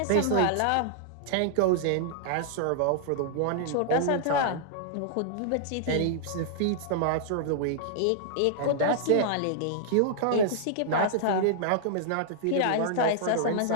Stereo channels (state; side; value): different; both; correlation -0.01